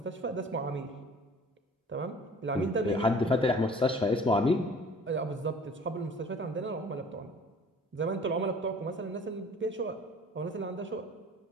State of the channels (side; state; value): both; normal; correlation 0.49